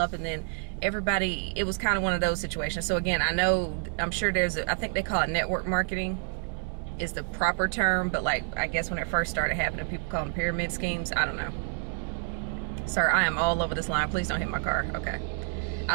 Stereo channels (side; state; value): left; silent; 59 dB below the other